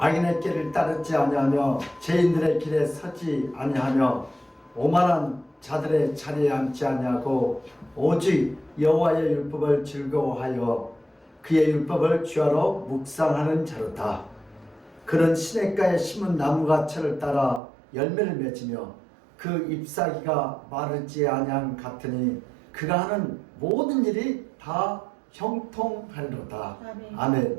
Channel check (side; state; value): left; drops out; at 17.6 s